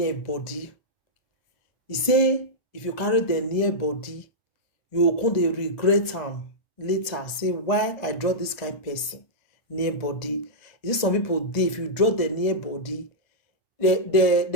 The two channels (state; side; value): late; right; 1.7 ms